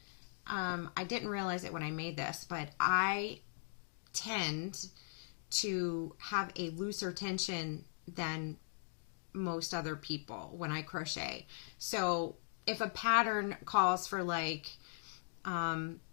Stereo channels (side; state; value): right; silent; digital silence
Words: I didn't realize it when I made this, but I tend to have a looser tension than most other people when I crochet. So if a pattern calls for like an